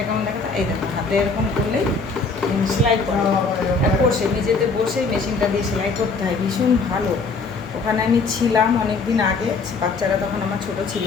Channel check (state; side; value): quieter; right; 4.3 dB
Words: কেমন দেখা, এই দেখো হাতে এরকম করলেই সেলাই করা, বসে নিজেতে বসেই মেশিনটা দিয়ে সেলাই করতে হয়। ভীষণ ভালো। ওখানে আমি ছিলাম অনেক দিন আগে, বাচ্চারা তখন আমার ছোট ছিল।